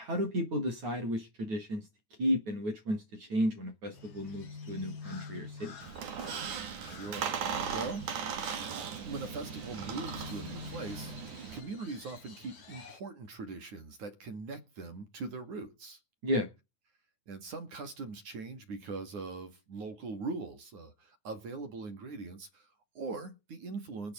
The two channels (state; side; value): late; left; 9.8 ms